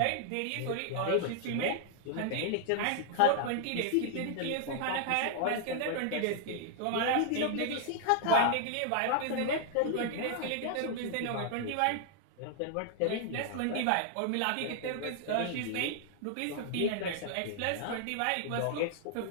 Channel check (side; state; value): both; different; correlation 0.00